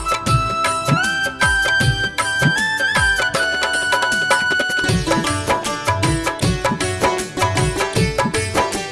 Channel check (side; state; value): both; identical; correlation 1.00